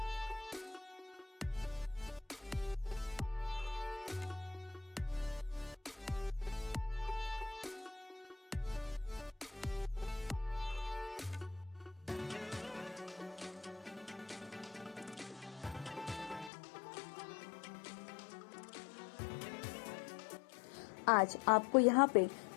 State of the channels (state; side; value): drops out; right; at 16.5 s